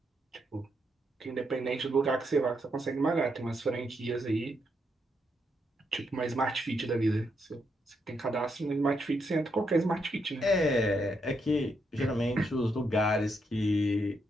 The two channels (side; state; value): both; normal; correlation 0.79